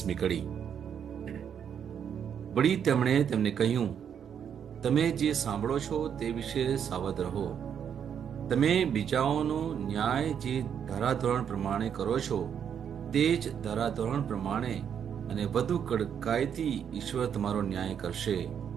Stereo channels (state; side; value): quieter; left; 8.2 dB